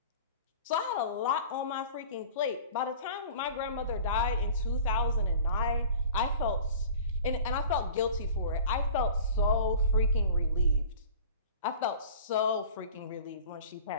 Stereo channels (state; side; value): inverted; both; correlation -0.41